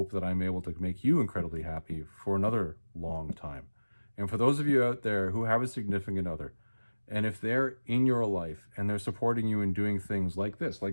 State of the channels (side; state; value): both; inverted; correlation -1.00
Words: that I'm able to make you incredibly happy for another long time. And for those of you out there who have a significant other, and if they're in your life and they're supporting you in doing things like this,